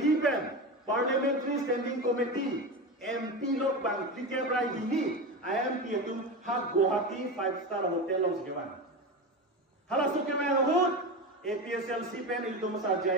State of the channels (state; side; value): normal; both; correlation 0.22